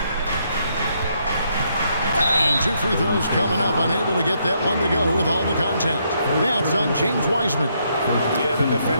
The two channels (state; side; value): inverted; both; correlation -0.74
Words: And 2 free throws coming up, unable to get that one to go with all the contact. That's on James Wiseman. Yeah, the